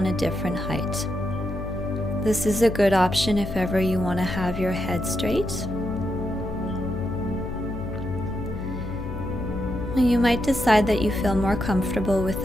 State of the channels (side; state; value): left; noise; hum, 7 dB below the sound